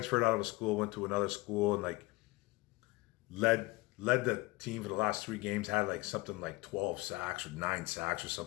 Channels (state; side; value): quieter; right; 22.1 dB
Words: out of a school, went to another school, and led the team for the last 3 games. Had something like 12 sacks or 9 sacks or